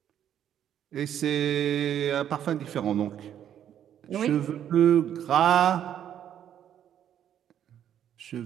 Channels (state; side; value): quieter; left; 10.1 dB